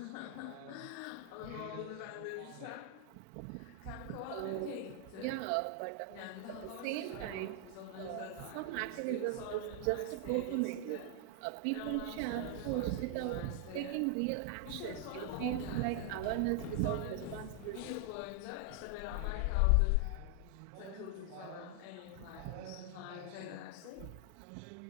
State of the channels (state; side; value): different; both; correlation 0.00